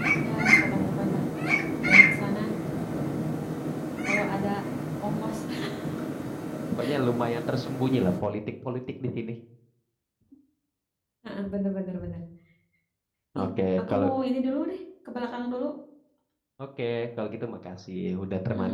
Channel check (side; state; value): both; identical; correlation 1.00